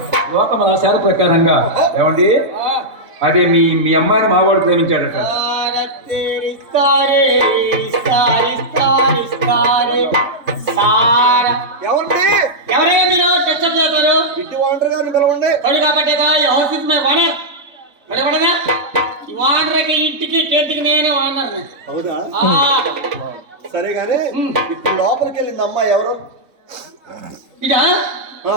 లోకముల శాల ప్రకారంగా ఏమండి అదే మీ అమ్మాయిని మావాడు ప్రేమించాడట. ఏమండి, ఎవరే మీరు డిస్టర్బ్ చేస్తారు? ఇంటి వాండర్ గారిని పిలవండి. కొడు కాబట్టి హౌస్ ఇస్ మై ఓనర్. పడేపడగా ఈ ఓనర్కి ఇంటికి టెంట్కి నేనే ఓనర్. అవునా? సరే గానీ ఇప్పుడు లోపలికి వెళ్ళింది అమ్మాయి ఎవరు? ఇదా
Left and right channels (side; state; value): left; late; 3.7 ms